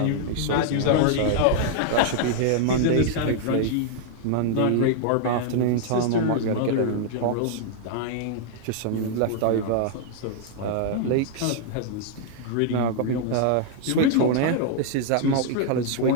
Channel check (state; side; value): different; both; correlation -0.01